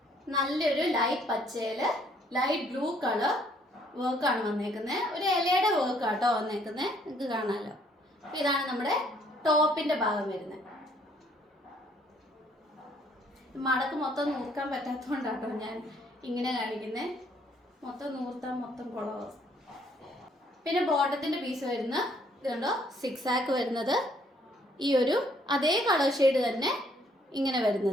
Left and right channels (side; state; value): both; normal; correlation 0.65